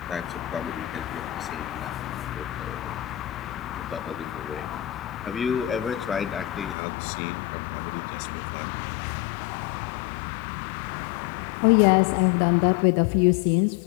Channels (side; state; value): right; drops out; at 6.8 s